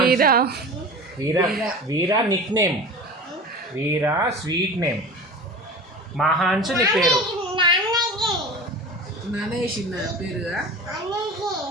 వీరా. వీరా నిక్ నేమ్. వీరా స్వీట్ నేమ్. మహాన్స్ నీ పేరు.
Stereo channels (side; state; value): both; normal; correlation 0.34